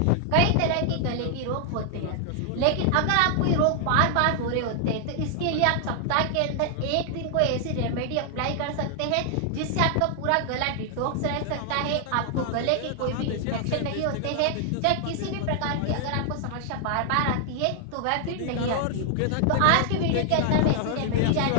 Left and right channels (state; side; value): different; both; correlation 0.00